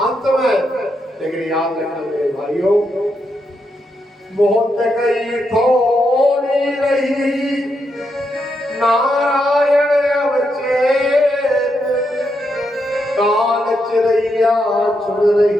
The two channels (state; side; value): normal; both; correlation 0.82